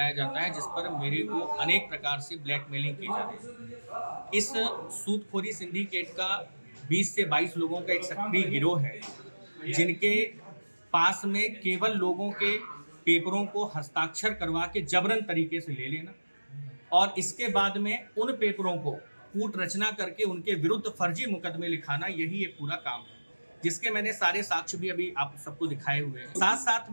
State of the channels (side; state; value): both; inverted; correlation -1.00